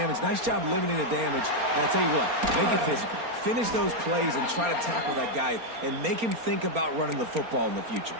Nice job limiting the damage. And I'll tell you what, make it physical. Finish those plays and try to tackle that guy and make him think about running the football in the future.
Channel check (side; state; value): left; late; 4.3 ms